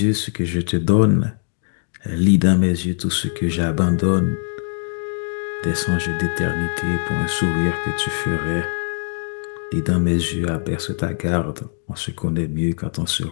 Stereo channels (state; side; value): silent; right; digital silence